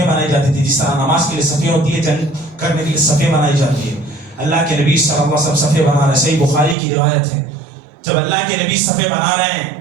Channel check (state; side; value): drops out; left; at 6.8 s